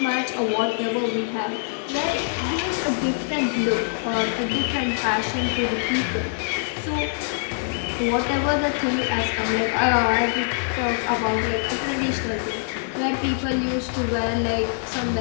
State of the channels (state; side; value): silent; right; digital silence